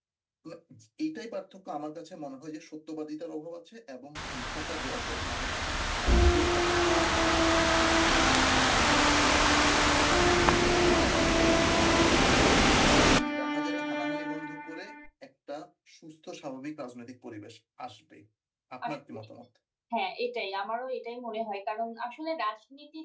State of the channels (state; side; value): identical; both; correlation 1.00